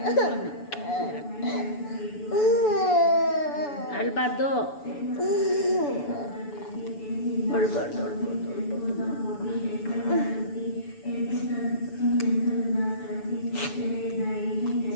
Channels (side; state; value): right; late; 6.9 ms